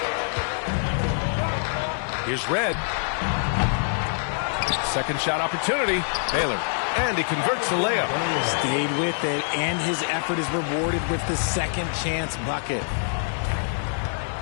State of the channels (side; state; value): right; silent; 62 dB below the other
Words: Here's Red. Second shot opportunity. Baylor. And he converts the layup. Stayed with it, and his effort is rewarded with the second chance bucket.